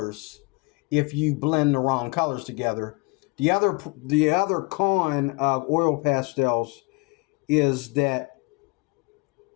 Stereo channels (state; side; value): quieter; right; 27.5 dB